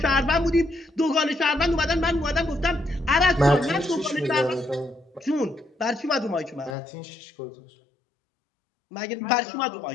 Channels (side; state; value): right; drops out; at 6.8 s